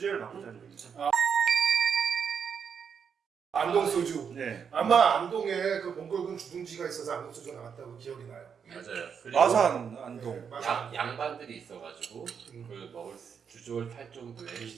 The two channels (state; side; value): quieter; left; 6.9 dB